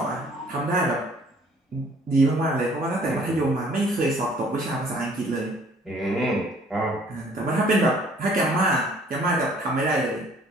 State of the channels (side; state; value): both; normal; correlation 0.57